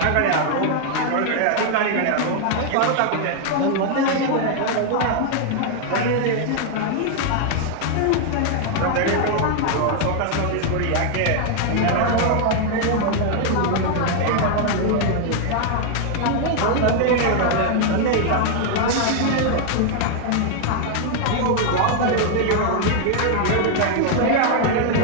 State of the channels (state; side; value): different; both; correlation 0.00